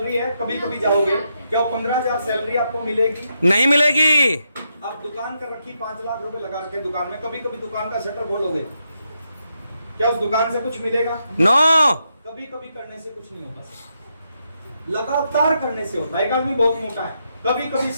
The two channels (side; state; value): both; inverted; correlation -0.81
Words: है, कभी कभी जाओगे, क्या 15,000 सैलरी आपको मिलेगी? नहीं मिलेगी। आप दुकान कर रखी 5 लाख रुपए लगा रखे दुकान में, कभी कभी दुकान का शटर खोलोगे, क्या उस दुकान से कुछ मिलेगा? नो। कभी कभी करने से कुछ नहीं होता सर, लगातार करने से होता है। एक आदमी बहुत मोटा है, कभी कभी